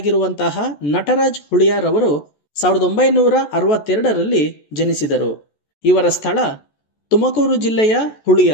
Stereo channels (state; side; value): late; right; 14 ms